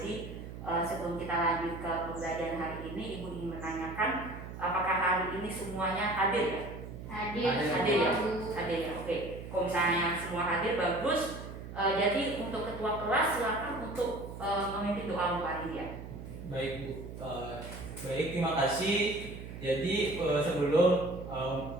sebelum kita lanjut ke pembelajaran hari ini, Ibu ingin menanyakan apakah hari ini semuanya hadir ya? Hadir ya? Bu. Hadir ya. Oke. Kalau misalnya semua hadir bagus. Jadi untuk ketua kelas silakan untuk memimpin doa hari ini ya. Baik, Bu. Baik, terima kasih. Jadi sebelum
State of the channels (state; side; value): noise; right; hum, 11 dB below the sound